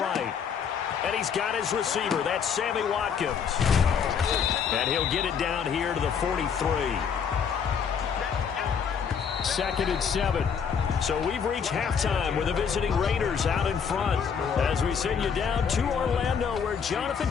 And he's got his receiver. That's Sammy Watkins. And he'll get it down here to the 43. 2nd and 7. So we've reached halftime with the visiting Raiders out in front as we send you down to Orlando where Jonathan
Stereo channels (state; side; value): quieter; right; 6.9 dB